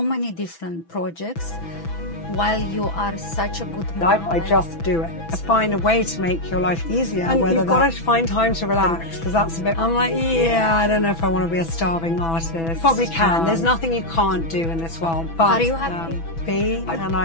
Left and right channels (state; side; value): late; right; 6.1 ms